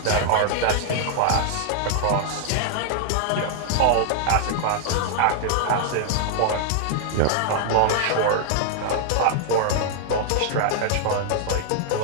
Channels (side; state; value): both; different; correlation -0.01